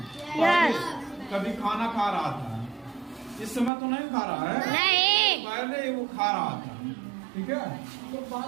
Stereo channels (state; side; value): drops out; left; at 3.7 s